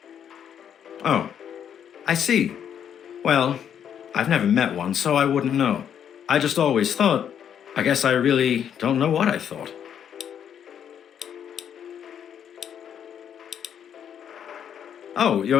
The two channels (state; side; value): quieter; right; 8.8 dB